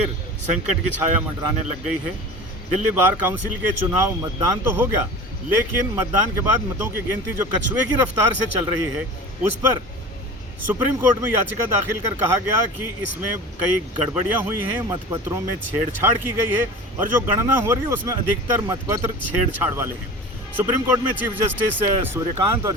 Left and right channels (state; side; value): normal; both; correlation 0.35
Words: संकट की छाया मंडराने लग गई है। दिल्ली बार काउंसिल के चुनाव मतदान तो हो गया, लेकिन मतदान के बाद मतों की गिनती जो कछुए की रफ्तार से चल रही है, उस पर सुप्रीम कोर्ट में याचिका दाखिल कर कहा गया कि इसमें कई गड़बड़ियां हुई हैं, मतपत्रों में छेड़छाड़ की गई है और जो गणना हो रही है उसमें अधिकतर मतपत्र छेड़छाड़ वाले हैं। सुप्रीम कोर्ट में चीफ जस्टिस सूर्यकांत और